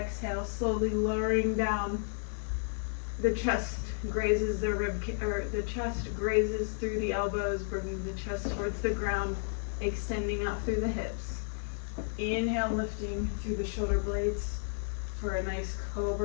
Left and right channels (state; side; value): silent; right; digital silence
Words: slowly lowering down. The chest grazes the the chest grazes through the elbows, bringing the chest towards the ground, extending out through the hips. Inhale, lifting through the shoulder blades for a nice